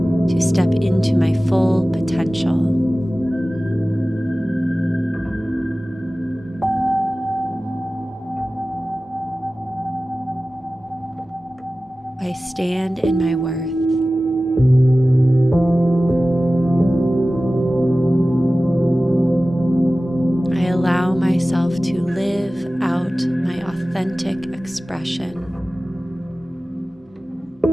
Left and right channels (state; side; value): normal; both; correlation 0.96